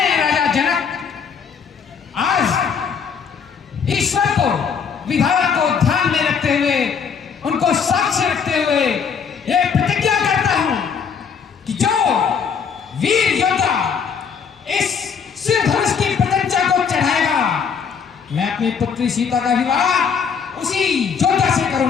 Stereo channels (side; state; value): right; quieter; 6.5 dB